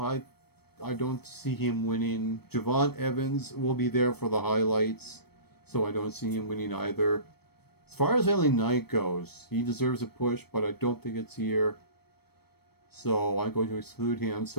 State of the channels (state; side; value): late; right; 0.97 ms